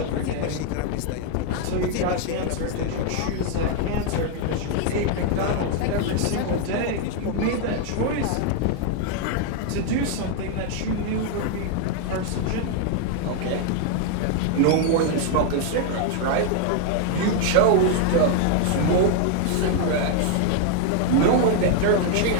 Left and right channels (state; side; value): different; both; correlation 0.00